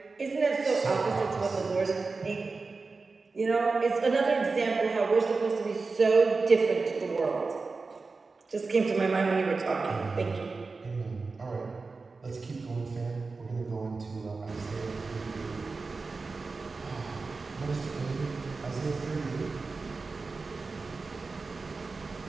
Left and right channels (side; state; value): left; quieter; 4.1 dB